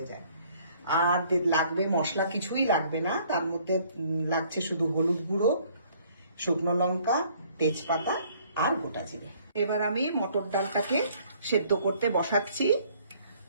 যায়। আর লাগবে মশলা, কিছুই লাগবে না, তার মধ্যে লাগছে শুধু হলুদ গুঁড়ো, শুকনো লঙ্কা, তেজপাতা আর গোটা জিরে। এবার আমি মটর ডালটাকে সেদ্ধ করতে বসাচ্ছি,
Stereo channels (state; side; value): inverted; both; correlation -0.60